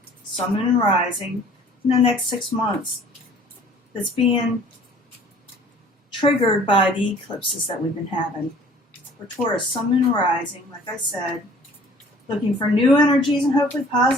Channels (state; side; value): normal; both; correlation 0.52